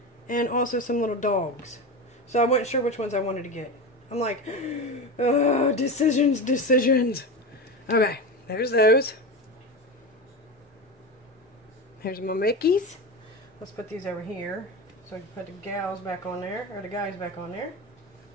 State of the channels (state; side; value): normal; both; correlation 0.22